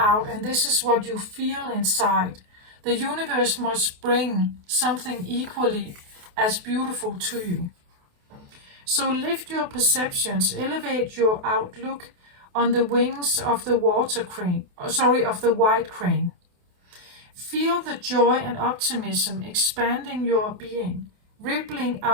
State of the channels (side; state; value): left; late; 28 ms